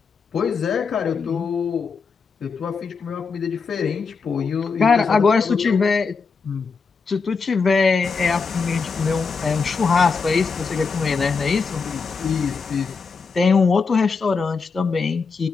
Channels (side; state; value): right; quieter; 5.0 dB